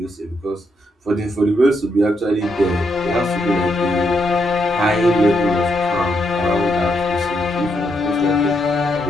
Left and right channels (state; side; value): normal; both; correlation 0.78